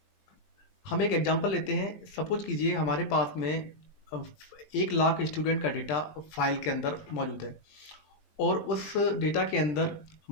हम एक एग्जांपल लेते हैं। सपोज कीजिए हमारे पास में 1 लाख स्टूडेंट का डेटा फाइल के अंदर मौजूद है और उस डेटा के अंदर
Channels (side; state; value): right; late; 20 ms